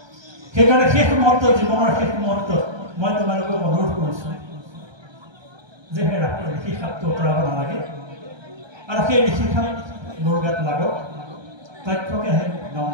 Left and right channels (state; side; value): late; left; 1.3 ms